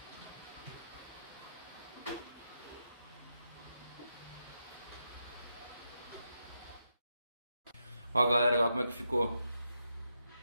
Ó, galera, olha como é que ficou.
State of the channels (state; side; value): inverted; both; correlation -0.84